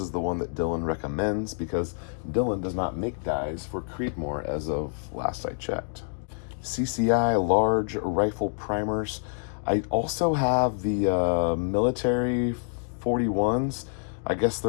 the one that Dylan recommends because Dylan does not make dies for Creedmoor as of last I checked. CCI large rifle primers. I also have the military 41s. I guess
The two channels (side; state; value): right; silent; digital silence